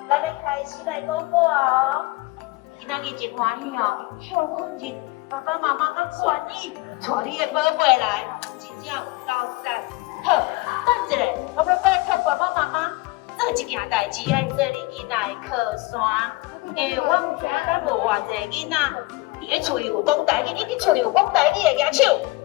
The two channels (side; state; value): right; quieter; 21.6 dB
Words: 咱要开始来讲故哦。今仔日真欢喜哦，休困日，爸爸妈妈甲愿意带你的宝贝来，真正有够赞。好，等一下，我要拜托爸爸妈妈做一件代志，爱做你囡仔的靠山。因为我唔知咱有偌济囡仔伫咧厝里有讲台语，你伫厝里有讲台语的举手。